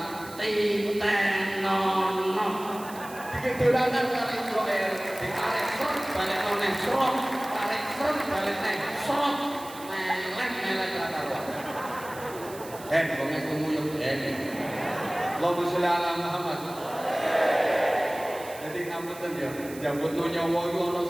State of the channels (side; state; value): right; noise; hiss, 17 dB below the sound